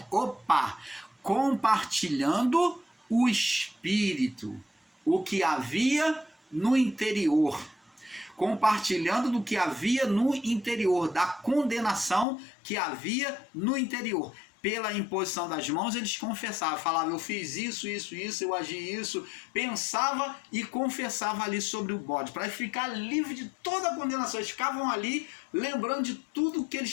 Compartilhando o Espírito, o que havia no interior. Compartilhando do que havia no interior, da condenação que havia no interior. Pela imposição das mãos, eles confessavam, falavam: eu fiz isso, eu agi isso, pensava e confessava ali sobre o bode, para ficar livre de toda a condenação. Eles ficavam ali lembrando de tudo que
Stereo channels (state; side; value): drops out; right; at 12.2 s